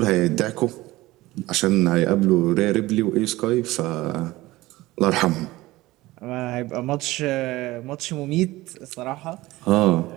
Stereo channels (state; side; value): quieter; left; 18.6 dB